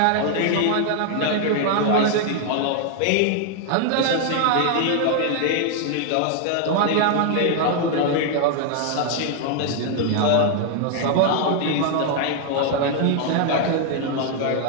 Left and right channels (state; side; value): different; both; correlation 0.00